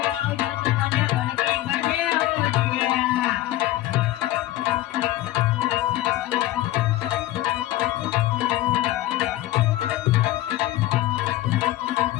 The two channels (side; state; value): right; quieter; 15.4 dB